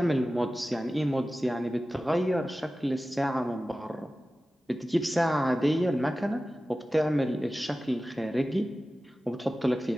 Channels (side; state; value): both; normal; correlation 0.95